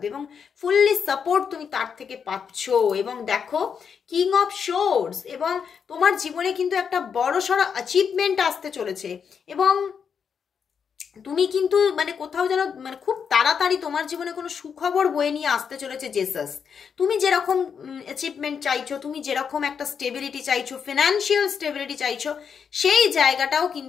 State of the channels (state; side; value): quieter; right; 6.8 dB